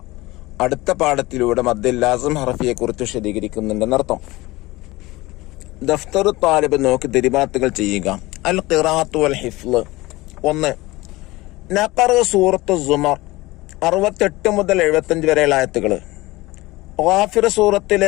അടുത്ത പാഠത്തിലൂടെ മദ്ദുൽ ലാസിം ഹർഫിയെ കുറിച്ച് വിശദീകരിക്കുന്നുണ്ടെന്നർത്ഥം. ദഫ്തറു താലിബ് നോക്കി ദിരിബാത്തുകൾ ചെയ്യുക. അൽ ഖിറാഅത്തു വൽ ഹിഫ്ള്. 1. നഖറ സൂറത്തു സുമർ 68 മുതൽ 75 വരെയുള്ള ആയത്തുകൾ. ഗാഫിർ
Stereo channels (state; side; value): quieter; right; 20.3 dB